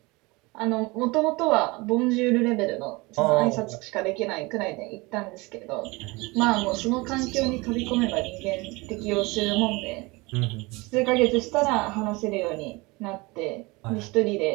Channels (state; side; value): quieter; left; 24.4 dB